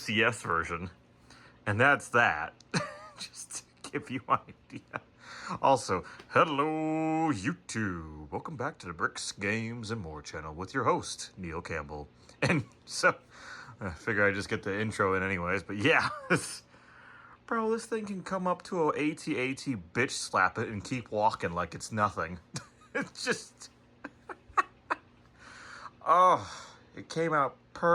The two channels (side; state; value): both; identical; correlation 1.00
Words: version. And that's that. Just to give you an idea. Also, hello YouTube. Welcome back to the Bricks, Games, and More channel with your host, Neil Campbell. And so, I figure I just get the intro in anyways, but yeah. Bro, this thing can come up to a AT-AT, bitch slap it, and keep walking like it's nothing. It's just... Oh, it came out